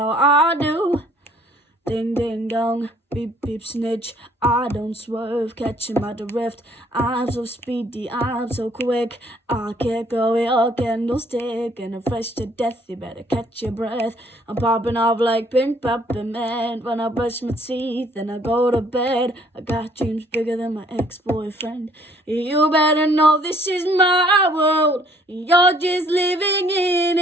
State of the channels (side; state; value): both; normal; correlation 0.61